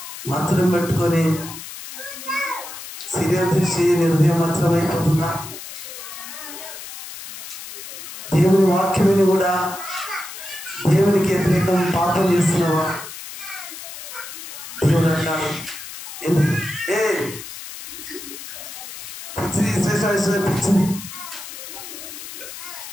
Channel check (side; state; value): left; noise; hiss, 11 dB below the sound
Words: మత్సరం పెట్టుకొని సీరియల్ దృష్టి హృదయం మత్సరం అయిపోతుందా? దేవుని వాక్యమని కూడా దేవునికి వ్యతిరేకం పాపం చేస్తున్నావా? దేవుడు అంటాడు ఎందుకు పిచ్చిది పిచ్చిది.